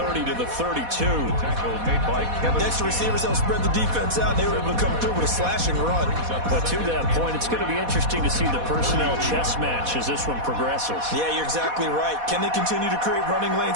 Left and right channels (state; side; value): late; left; 4.1 ms